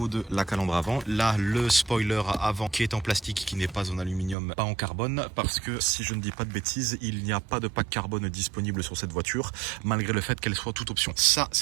de la calandre avant. Là, le spoiler avant qui est en plastique, qui n'est pas en aluminium, pas en carbone, parce que, si je ne dis pas de bêtises, il n'y a pas de pack carbone disponible sur cette voiture, malgré le fait qu'elle soit toute option. Ça,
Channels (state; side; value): drops out; left; at 4.4 s